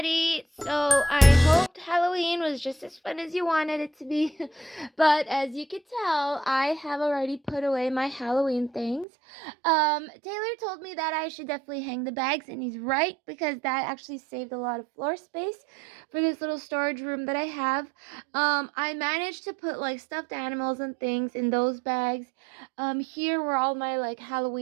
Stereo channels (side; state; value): left; drops out; at 9.1 s